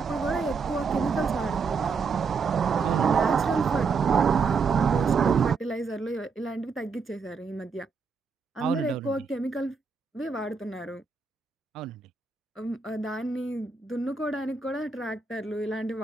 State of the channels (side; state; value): left; quieter; 5.0 dB